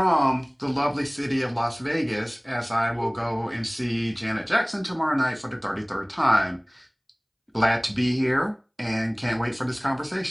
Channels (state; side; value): identical; both; correlation 1.00